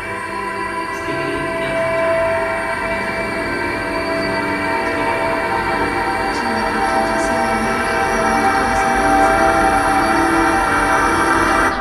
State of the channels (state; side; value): identical; both; correlation 1.00